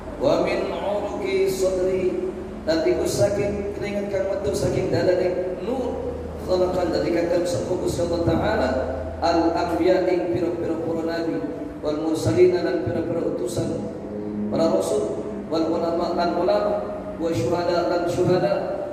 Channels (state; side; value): identical; both; correlation 1.00